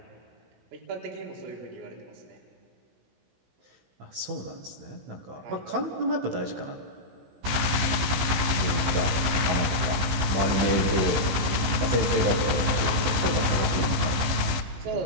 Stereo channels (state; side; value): late; left; 15 ms